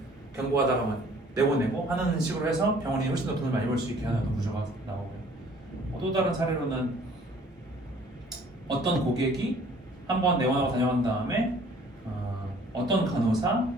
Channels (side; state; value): both; normal; correlation 0.55